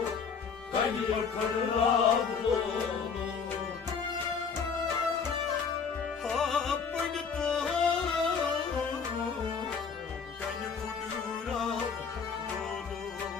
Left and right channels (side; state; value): right; quieter; 5.9 dB